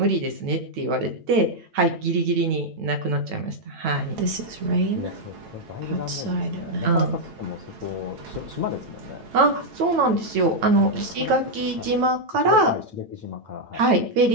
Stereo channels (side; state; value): left; late; 9.0 ms